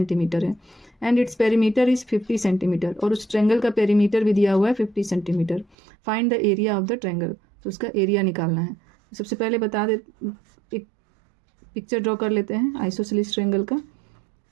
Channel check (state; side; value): drops out; left; at 5.8 s